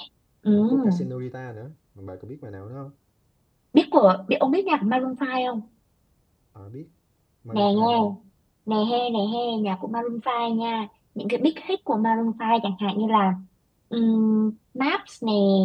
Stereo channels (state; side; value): identical; both; correlation 1.00